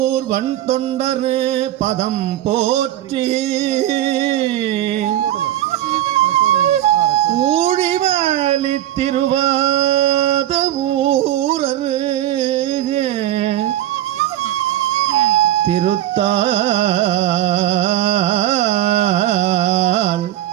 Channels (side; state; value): left; quieter; 13.3 dB